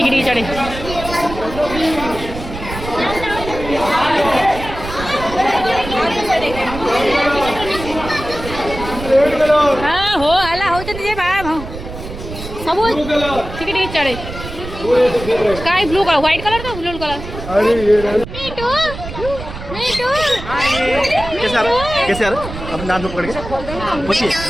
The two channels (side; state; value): right; noise; rumble, 10 dB below the sound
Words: चढ़े हाँ हो हला हो सब ठीक चढ़े sky blue colour white colour तो ब्लू कलर कैसे आ रहा अपने नाम से पकड़ के पूछिए